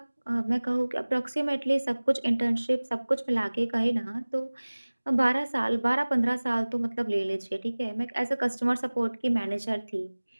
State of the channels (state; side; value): inverted; both; correlation -1.00